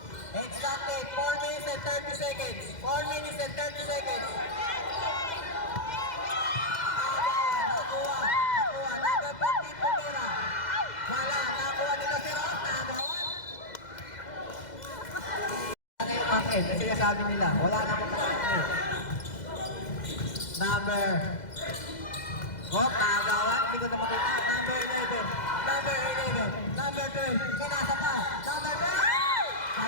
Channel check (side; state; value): right; late; 2.0 ms